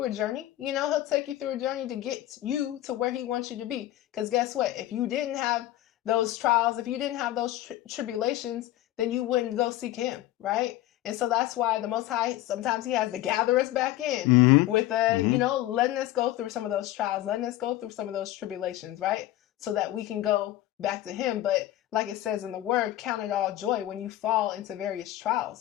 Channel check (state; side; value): quieter; right; 14.8 dB